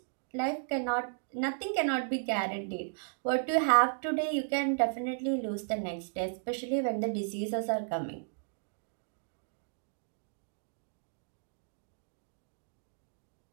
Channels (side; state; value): left; silent; digital silence